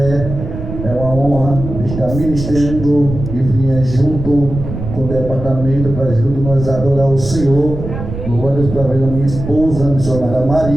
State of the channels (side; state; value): right; noise; rumble, 8 dB below the sound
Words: É uma honra estar ministrando e vir junto com o departamento para junto nós adorar o Senhor. Louva a Deus pela vida da minha esposa, a missionária